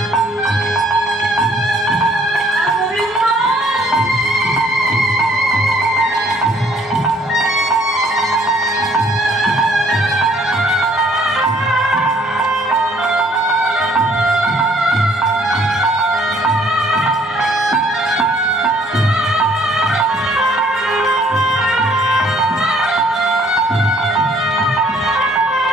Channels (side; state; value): both; normal; correlation 0.61